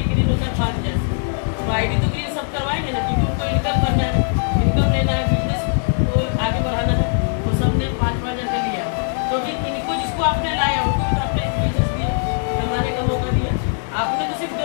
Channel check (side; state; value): right; silent; digital silence